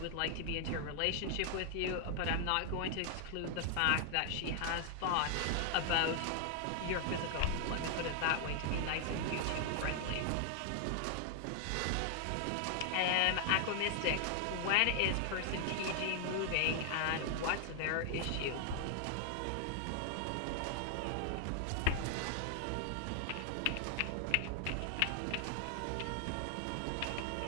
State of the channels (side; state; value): both; different; correlation 0.00